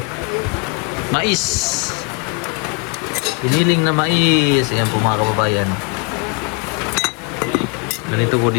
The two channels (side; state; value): right; quieter; 30.3 dB